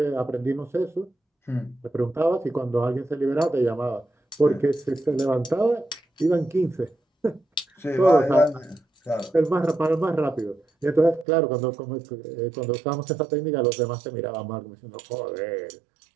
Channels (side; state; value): left; drops out; at 11.2 s